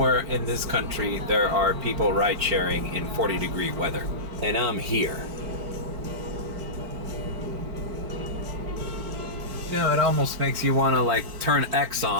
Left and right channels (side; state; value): left; late; 4.4 ms